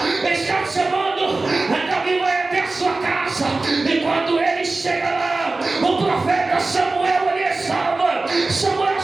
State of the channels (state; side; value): quieter; left; 3.4 dB